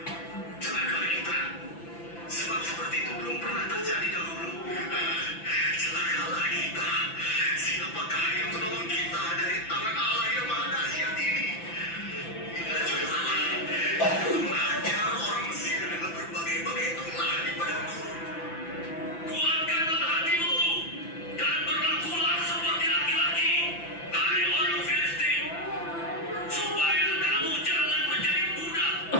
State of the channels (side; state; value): right; late; 5.9 ms